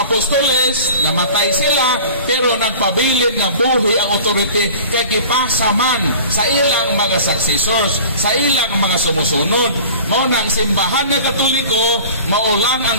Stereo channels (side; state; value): both; inverted; correlation -0.42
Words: apostoles, namatay sila, pero nagpabilin nga buhi ang authority kay gipasa man sa ilang mga successors, sa ilang mga sumusunod. Mao nang simbahan nga Katoliko, maulang